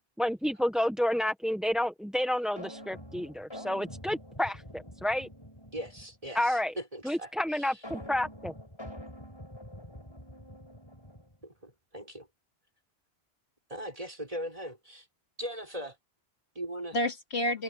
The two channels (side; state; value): both; normal; correlation 0.76